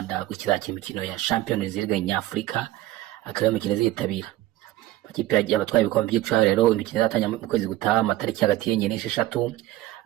gukizakira imikino ya Champions League nyafurika, akaba imikino zitabira ikipe y'abatwaye ibikombe by'icaro. Rero imikino izatanya mu kwezi gutaha amatariki hagati y'enye n'esheshatu.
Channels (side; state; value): left; quieter; 15.7 dB